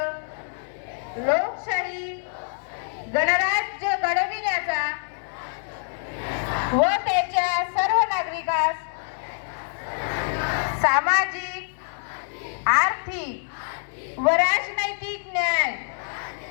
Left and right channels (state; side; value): silent; right; 61 dB below the other